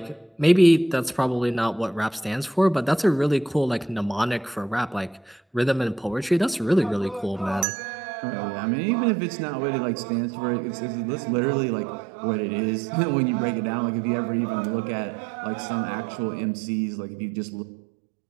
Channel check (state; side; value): drops out; left; at 7.7 s